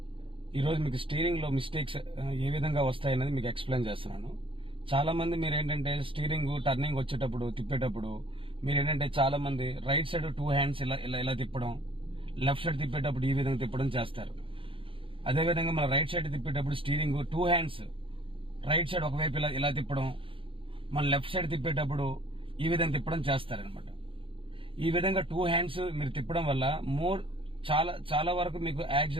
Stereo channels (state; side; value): late; left; 0.25 ms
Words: ఈరోజు మీకు స్టీరింగ్లో mistakes ఏ విధంగా వస్తాయనేది మీకు ఎక్స్ప్లెయిన్ చేస్తున్నాను. చాలామంది మీరు ఏంటంటే స్టీరింగ్ టర్నింగ్ వచ్చేటప్పుడు తిప్పేటప్పుడు మీరు ఏంటంటే చాలామంది రైట్ సైడ్ 2 హ్యాండ్స్ ఇలా ఇలా ఇలా తిప్పడం, లెఫ్ట్ సైడ్ తిప్పేటప్పుడు ఈ విధంగా తిప్పడం చేస్తారు. అదేవిధంగా మన రైట్ సైడ్ తిప్పేటప్పుడు స్టీరింగ్ 2 హ్యాండ్స్ రైట్ సైడ్ ఒకవైపు ఇలా ఇలా తిప్పడం, మన లెఫ్ట్ సైడ్ తిప్పేటప్పుడు ఈ విధంగా తిప్పడం చేస్తారనమాట. ఈ విధంగా 2 హ్యాండ్స్ మీరు తిప్పడం వల్ల చాలా వరకు మీకు